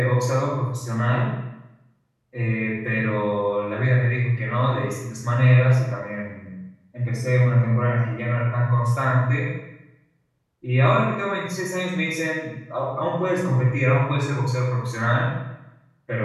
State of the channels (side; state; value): both; identical; correlation 1.00